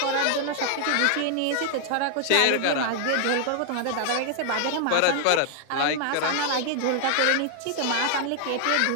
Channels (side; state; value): both; different; correlation 0.00